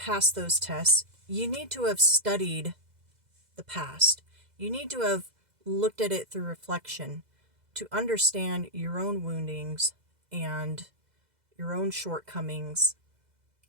those tests, you need to have studied the past. You need to have looked at it through reflection to understand your own woundings and your own shortcomings.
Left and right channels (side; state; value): left; late; 2.0 ms